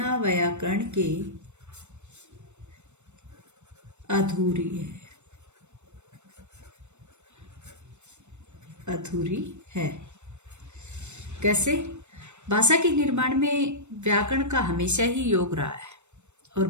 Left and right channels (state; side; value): late; left; 0.83 ms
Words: अधूरी है। कैसे? भाषा के निर्माण में व्याकरण का हमेशा ही योग रहा है और